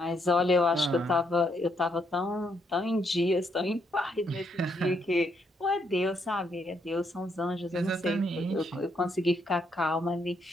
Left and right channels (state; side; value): normal; both; correlation 0.75